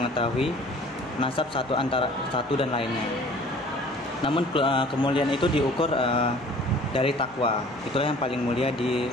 nasab satu dan lainnya. Namun kemuliaan itu diukur dari takwa. Itulah yang paling mulia di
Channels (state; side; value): normal; both; correlation 0.49